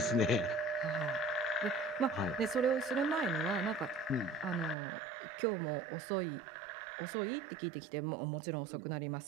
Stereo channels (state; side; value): drops out; left; at 4.8 s